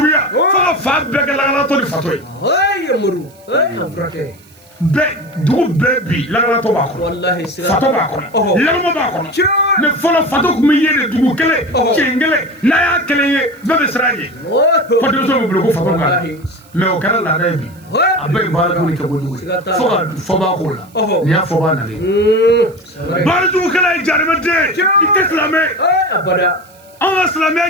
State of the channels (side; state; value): right; noise; hiss, 28 dB below the sound